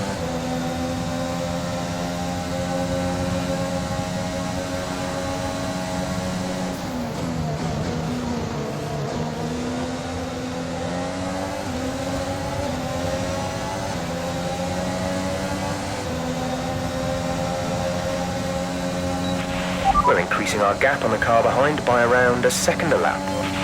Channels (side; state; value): both; identical; correlation 1.00